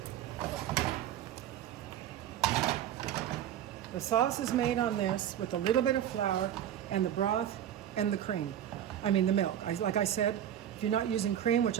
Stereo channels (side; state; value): left; quieter; 10.7 dB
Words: The sauce is made on this with a little bit of flour and the broth and the cream. I mean the milk. Like I said, if you're not using cream, which